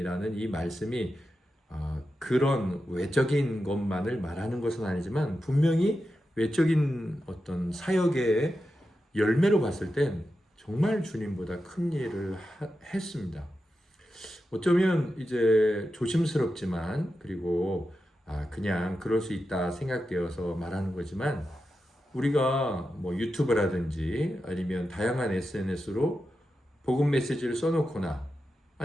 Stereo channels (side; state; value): both; normal; correlation 0.90